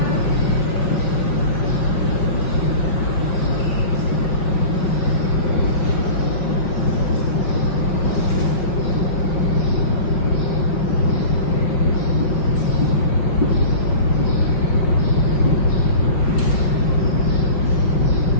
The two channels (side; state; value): right; late; 5.4 ms